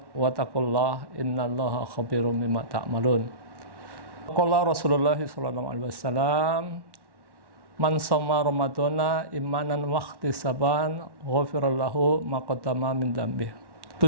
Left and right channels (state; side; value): late; left; 1.1 ms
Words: wa taqullaha innallaha khabirum bima ta'malun. Qala Rasulullah sallallahu alaihi wasallam, man shoma ramadhana imanan wa ihtisaban ghufira lahu ma qaddama min dzambih.